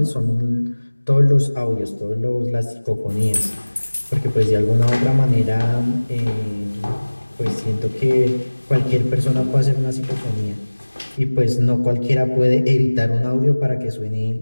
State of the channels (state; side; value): inverted; both; correlation -1.00